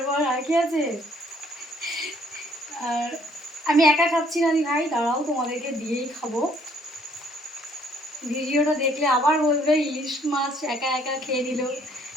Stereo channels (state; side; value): normal; both; correlation 0.63